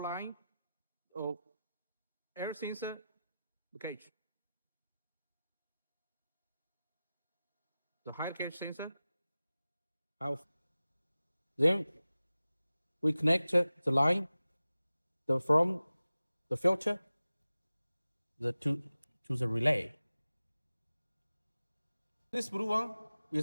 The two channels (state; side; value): inverted; both; correlation -0.95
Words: line of air sensor gauge, the high gauge sensor. Then we connect the line from the filter to the relay. This blue one